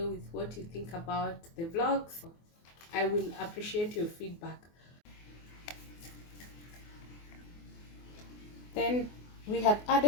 with what you think about the vlogs. I will appreciate your feedback. Then we have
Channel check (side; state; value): right; late; 24 ms